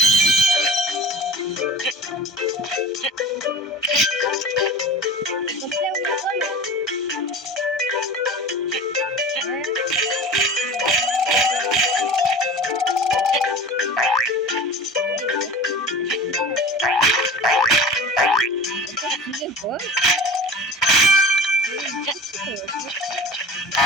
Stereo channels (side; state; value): both; normal; correlation 0.37